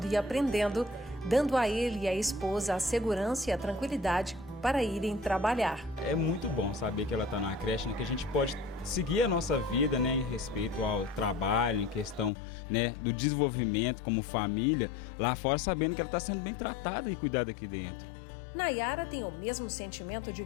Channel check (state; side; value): drops out; right; at 12.3 s